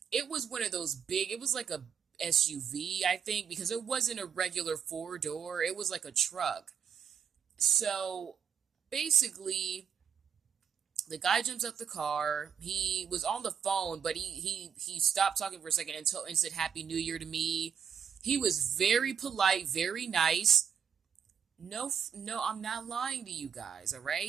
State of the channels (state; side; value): quieter; left; 7.4 dB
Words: it was one of those big, it was like a SUV, I think, because it wasn't a regular four door, it was like a truck. So basically, the guy jumps out the car. He was on the phone, but he stopped talking for a second and said Happy New Year to me. He was very polite, very nice. No, I'm not lying to you guys, all